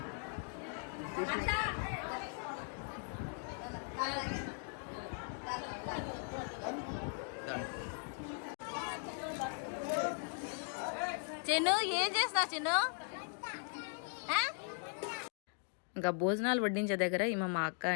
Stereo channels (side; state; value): right; silent; 52 dB below the other